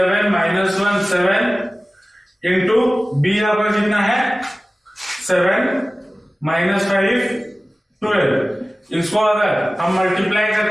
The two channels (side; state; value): both; normal; correlation 0.97